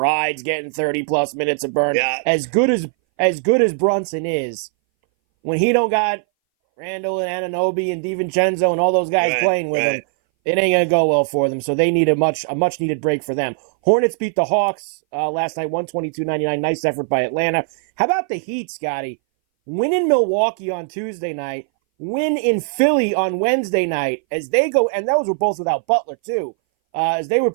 getting 30-plus minutes of burn. Yeah. As good as Brunson is, when he don't got Randall and Anunoby and DiVincenzo and all those guys playing with him, it ain't going to go well for them. So they need a much-needed break for them. Hornets beat the Hawks last night, 122-99. Nice effort by Atlanta. How about the Heat, Scotty? Win in Milwaukee on Tuesday night. Win in Philly on Wednesday night as they go, and those were both without Butler, too, as they were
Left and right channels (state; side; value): silent; left; 61 dB below the other